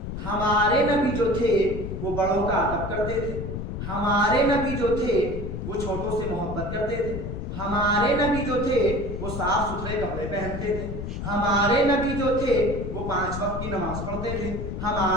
ہمارے نبی جو تھے وہ بڑوں کا ادب کرتے تھے، ہمارے نبی جو تھے وہ چھوٹوں سے محبت کرتے تھے، ہمارے نبی جو تھے وہ صاف ستھرے کپڑے پہنتے تھے، ہمارے نبی جو تھے وہ 5 وقت کی نماز پڑھتے تھے،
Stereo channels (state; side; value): noise; left; rumble, 6 dB below the sound